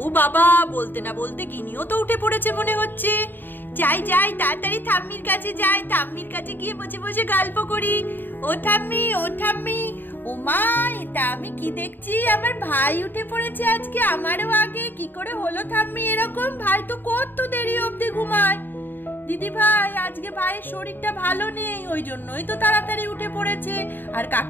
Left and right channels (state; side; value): late; right; 0.092 ms